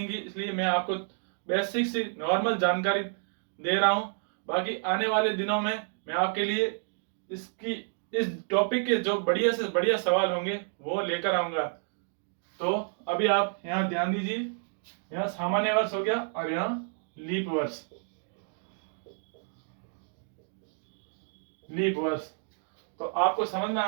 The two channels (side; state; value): left; silent; 58 dB below the other